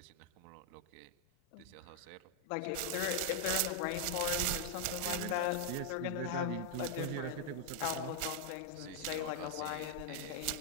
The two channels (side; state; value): both; different; correlation 0.00